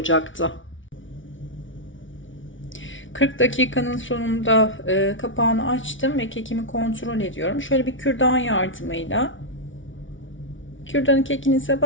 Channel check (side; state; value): right; late; 0.56 ms